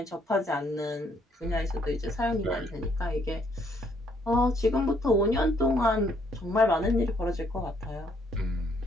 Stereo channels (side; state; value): both; normal; correlation 0.68